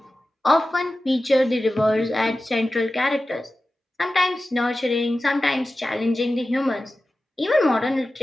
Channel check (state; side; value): normal; both; correlation 0.94